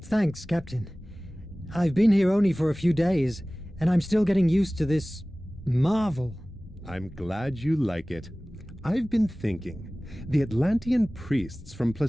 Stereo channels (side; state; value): both; normal; correlation 0.98